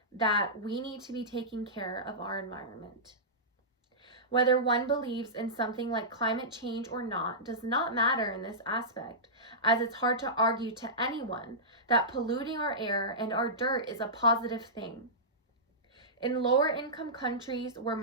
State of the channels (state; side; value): normal; both; correlation -0.16